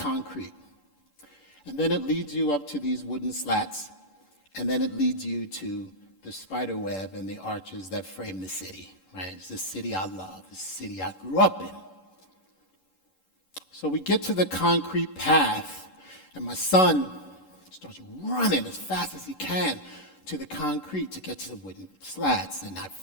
And then it leads you up to these wooden slats, and then it leads you to the spider web and the arches that frame the city. Right? It's the city I love, the city I grew up in. So we get to the concrete path, and my son starts running as fast as he can to the concrete to get to the wooden slats. And I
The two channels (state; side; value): late; right; 11 ms